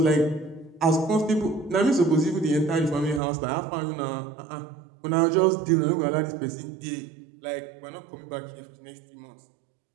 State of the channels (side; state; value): left; drops out; at 3.2 s